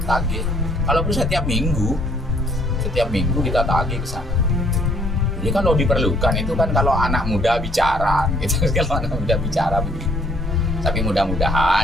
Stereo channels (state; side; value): normal; both; correlation 0.64